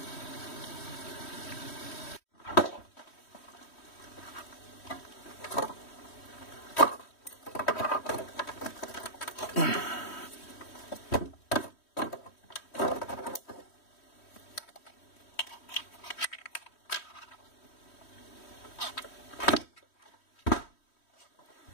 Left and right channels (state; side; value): late; right; 3.1 ms